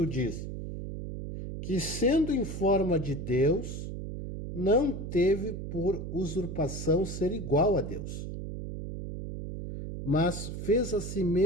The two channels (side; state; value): right; noise; hum, 7 dB below the sound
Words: diz: que, sendo em forma de Deus, não teve por usurpação ser igual a Deus, mas fez a si